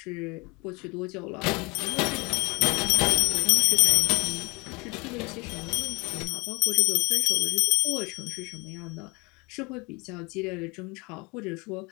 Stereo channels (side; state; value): right; quieter; 27.4 dB